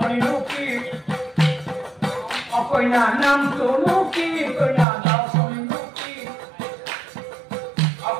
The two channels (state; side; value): drops out; left; at 4.9 s